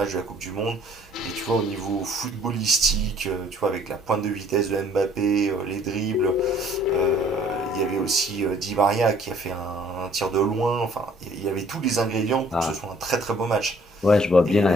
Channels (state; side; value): normal; both; correlation 0.58